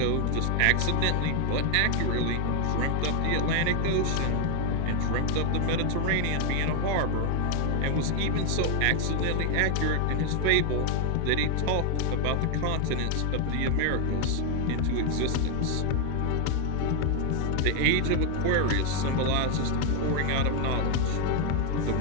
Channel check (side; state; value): both; different; correlation 0.01